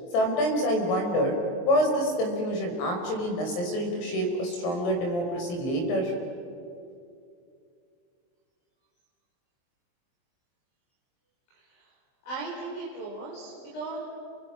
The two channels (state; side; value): late; right; 23 ms